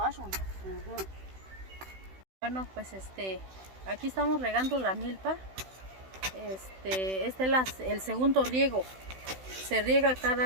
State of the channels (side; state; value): left; late; 16 ms